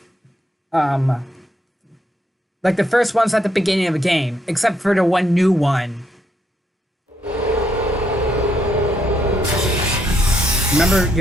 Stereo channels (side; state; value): both; normal; correlation 0.75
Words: like the first ones at the beginning of the game, except for the one new one. Remember